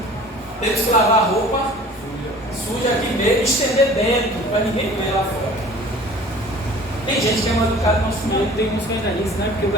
temos que lavar a roupa suja aqui mesmo, estender dentro, para ninguém ver lá fora. Tem gente que é mal educada no nosso meio. Tem uns que ainda dizem, né? Porque o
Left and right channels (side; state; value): both; normal; correlation 0.46